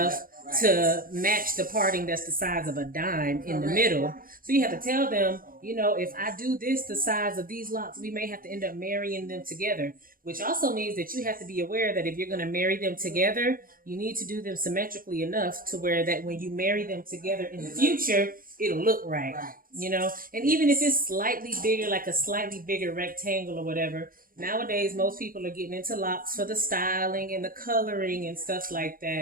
to match the parting that's the size of a dime in the middle. So you have to tell them, you know, if I do this the size of these locks, we may have to end up marrying them together, which also means that you have to be aware that if you're going to marry them together, you need to do them symmetrically enough to where that when you marry them together in the future, it'll look right, you know? And even if it's slightly bigger, like a slightly bigger rectangle or whatever, nowadays most people are getting into locks for the styling and the coloring and stuff like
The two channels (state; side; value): late; left; 0.41 ms